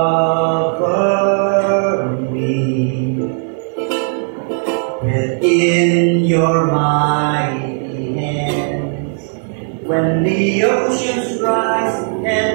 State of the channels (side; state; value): left; silent; 63 dB below the other